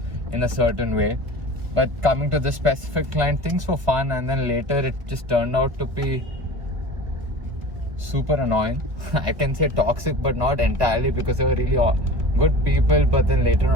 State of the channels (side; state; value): left; late; 1.6 ms